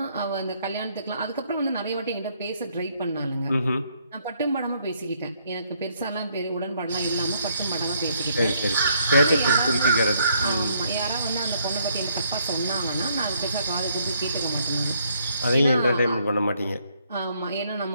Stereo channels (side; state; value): both; inverted; correlation -0.69